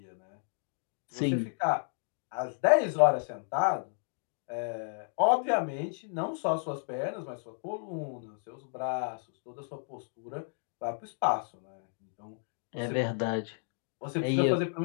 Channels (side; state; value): right; silent; 56 dB below the other